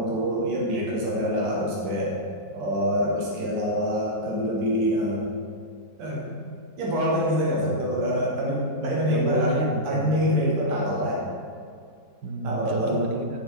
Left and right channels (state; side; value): late; left; 7.7 ms